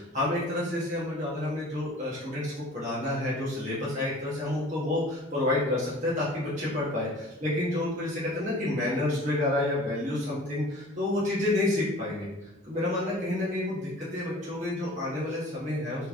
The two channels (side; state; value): both; normal; correlation 0.46